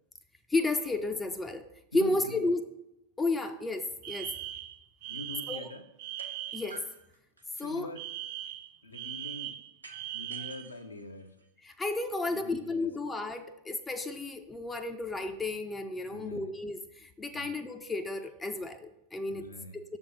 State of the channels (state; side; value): normal; both; correlation 0.69